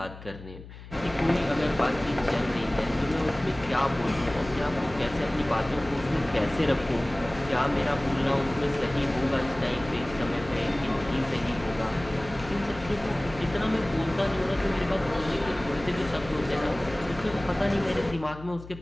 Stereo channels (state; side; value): noise; left; hum, 16 dB below the sound